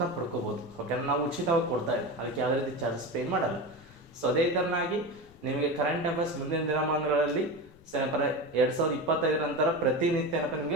ಪಡ್ಕೋಬೋದು. ಓಕೆನಾ, ನಾವು ಉಚಿತವಾಗಿ ಕೊಡ್ತಾ ಇದ್ದೀವಿ, ಅದಕ್ಕೆ ಯಾವುದೇ ರೀತಿ ಚಾರ್ಜಸ್ ಪೇ ಮಾಡಲ್ಲ. ಸೊ ಅದೇ ಥರನಾಗಿ ನಿಮಗೆ ಕರೆಂಟ್ ಅಫೇರ್ಸ್ ಮುಂದಿನ ದಿನಮಾನಗಳಲ್ಲಿ ಏನಪ್ಪ 2025 ನಂತರ ಪ್ರತಿನಿತ್ಯ ಏನಪ್ಪ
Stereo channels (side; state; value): left; noise; rumble, 25 dB below the sound